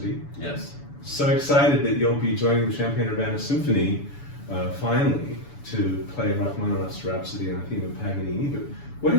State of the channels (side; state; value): right; late; 7.0 ms